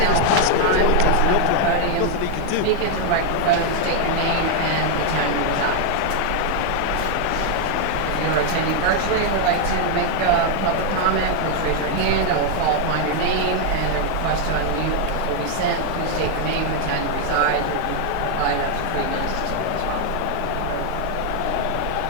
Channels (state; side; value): different; both; correlation 0.00